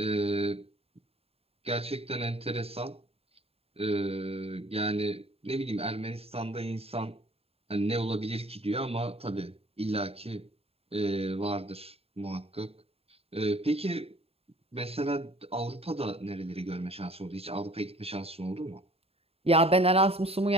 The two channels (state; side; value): late; left; 0.29 ms